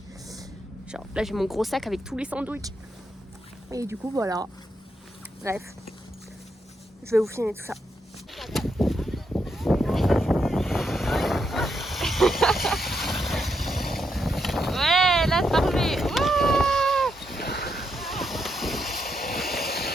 Genre, là, j'ai mon gros sac avec tous les sandwichs. Et du coup, voilà. Bref. Je vais vous filmer tout ça. Ouais, là, c'est parfait. Wouh!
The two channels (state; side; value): normal; both; correlation 0.81